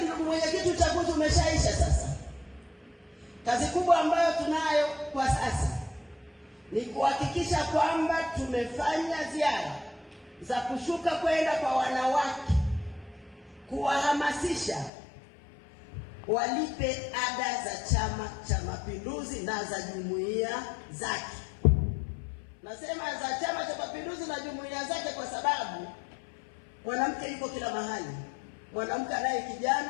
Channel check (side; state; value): right; drops out; at 14.9 s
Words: ndugu mwenyekiti, uchaguzi umeshaisha sasa. Kazi kubwa ambayo tunayo kwa sasa ni kuhakikisha kwamba tumefanya ziara za kushuka kwenda kwa wanawake, kuwahamasisha walipe ada za Chama cha Mapinduzi na za jumuiya zake. Nasema za Chama cha Mapinduzi na jumuiya zake kwa sababu mwanamke yuko kila mahali. Mwanamke anaye